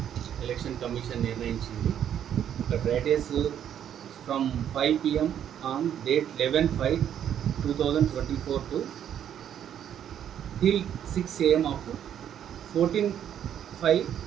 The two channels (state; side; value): quieter; left; 9.7 dB